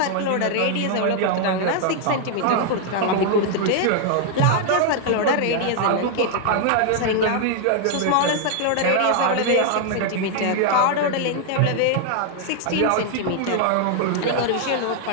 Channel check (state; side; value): different; both; correlation 0.00